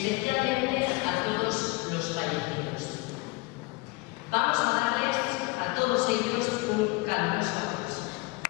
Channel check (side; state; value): right; quieter; 25.4 dB